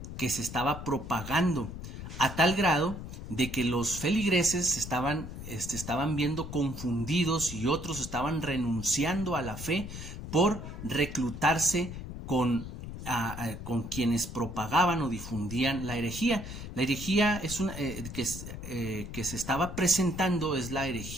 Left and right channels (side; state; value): left; noise; rumble, 9 dB below the sound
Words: que se estaba propagando a tal grado de que los feligreses estaban viendo confundidos y otros estaban renunciando a la fe por reclutarse con quienes propagaban o difundían la herejía. La herejía es una, que se estaba presentando es la